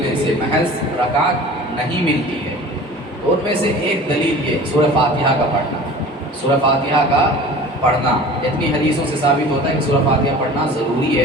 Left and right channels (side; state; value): both; normal; correlation 0.41